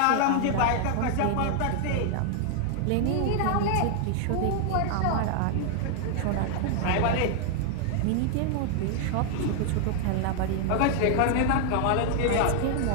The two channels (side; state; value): both; different; correlation 0.00